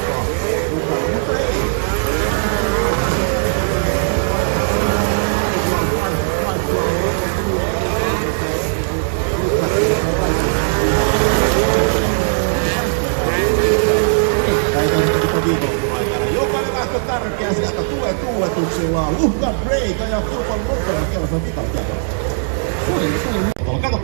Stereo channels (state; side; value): silent; left; digital silence